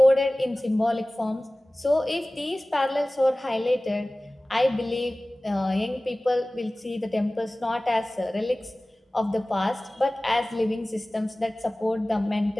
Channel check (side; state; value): both; normal; correlation 0.98